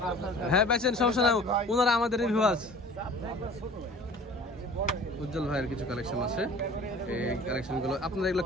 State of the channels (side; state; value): both; normal; correlation 0.45